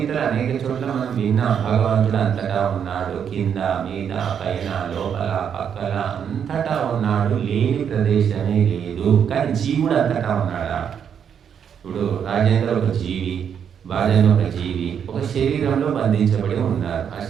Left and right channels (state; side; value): quieter; left; 8.0 dB